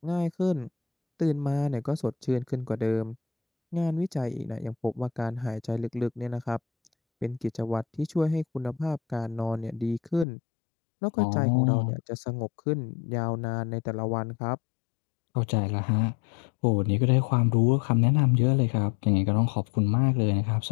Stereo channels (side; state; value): right; drops out; at 10.2 s